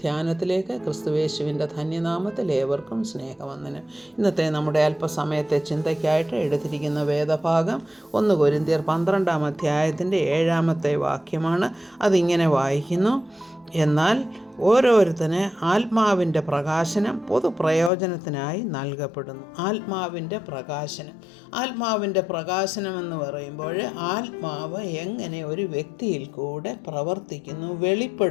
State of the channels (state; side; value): drops out; right; at 17.9 s